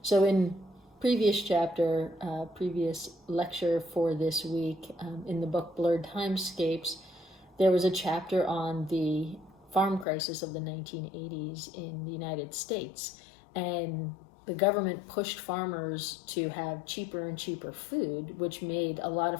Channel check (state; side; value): drops out; right; at 10.1 s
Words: So in previous lecture for this week, in the book Blurred Timescapes, there was a chapter on the farm crisis of the 1980s in the United States. And the government pushed farmers to have cheaper and cheaper food, which made a lot